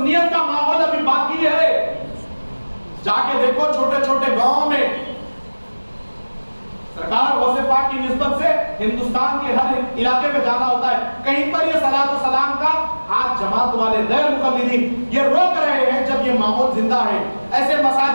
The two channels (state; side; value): inverted; both; correlation -1.00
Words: کا ماحول ابھی باقی ہے. جا کے دیکھو چھوٹے چھوٹے گاؤں میں سرکار غوث پاک کی نسبت سے ہندوستان کے ہر علاقے میں جانا ہوتا ہے, کہیں پر یہ صلاۃ و سلام کا آج جماعت والے غیر مقلدین یہ روک رہے ہیں جب یہ ماحول زندہ ہے. ایسے